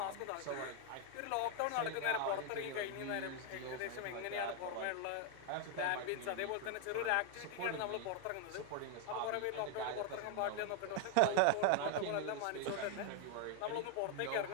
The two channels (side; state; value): both; different; correlation 0.00